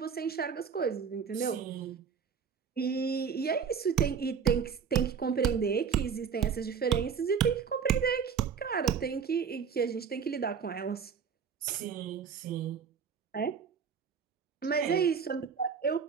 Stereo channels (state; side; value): quieter; left; 6.7 dB